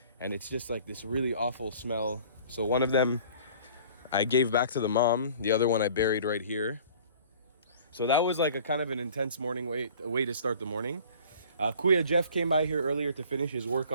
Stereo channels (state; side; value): inverted; both; correlation -0.49